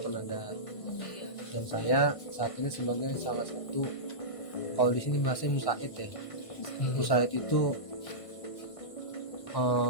Dan saya saat ini sebagai salah satu, kalau di sini bahasanya musaid ya. Musaid itu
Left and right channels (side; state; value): right; late; 1.5 ms